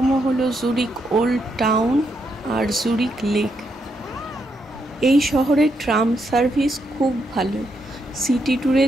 হলো জুরিখ ওল্ড টাউন আর জুরিখ লেক। এই শহরের ট্রাম সার্ভিস খুব ভালো। সিটি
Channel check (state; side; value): normal; both; correlation 0.79